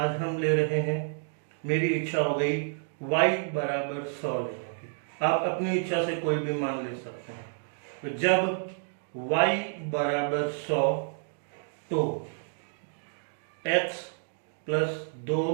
हम ले रहे हैं, मेरी इच्छा हो गई y बराबर 100 लेने की। आप अपनी इच्छा से कोई भी मान ले सकते हैं। तो जब y बराबर 100 तो x प्लस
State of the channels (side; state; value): left; silent; digital silence